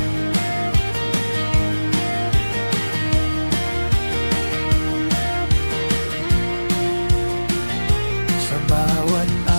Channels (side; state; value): both; inverted; correlation -1.00